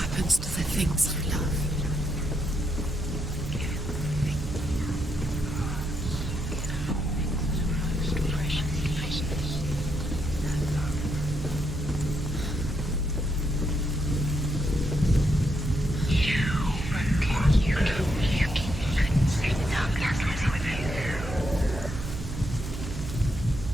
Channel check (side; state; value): right; noise; hum, 8 dB below the sound